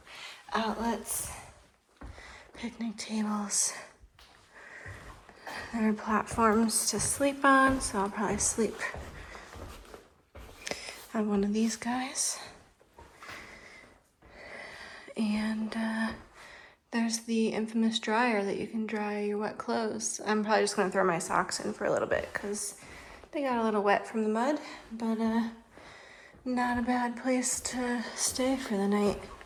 outlets, picnic tables. There are platforms to sleep on, so I'll probably sleep on one of these guys. And there's the infamous dryer that you can dry your wet clothes. I'm probably just gonna throw my socks in for a little bit because they got a little wet from the mud, but not a bad place to stay for the night.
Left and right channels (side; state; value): both; identical; correlation 1.00